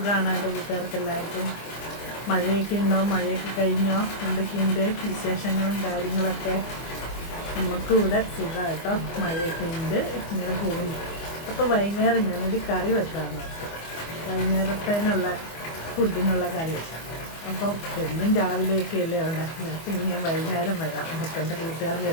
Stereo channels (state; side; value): late; right; 24 ms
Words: എൻ്റെ കൂട്ടുകാർക്ക് എല്ലാവർക്കും. മഴയൊക്കെ ഉണ്ടോ? മഴയൊക്കെ കഴിഞ്ഞോ? എന്തൊക്കെയുണ്ട് വിശേഷങ്ങളും കാര്യങ്ങളൊക്കെ? നമുക്കും ഇവിടെ സുഖമാണ് കേട്ടോ. മഴയൊക്കെ ഉണ്ട്, ഇങ്ങനെ പോകുന്നു. അപ്പോൾ വൈകുന്നേരം ഞാനൊരു കറി വെക്കാമെന്ന് ഓർത്തു. വൈകുന്നേരത്തേനുള്ള ഫുഡിനുള്ള കറി. അപ്പം എന്നും രാവിലെയൊക്കെ അല്ലേ ഉണ്ടാക്കുന്നത്. അപ്പം ഇനി ഞാൻ വൈകുന്നേരം വരാം അപ്പം എൻ്റെ കൂട്ടുകാരുടെ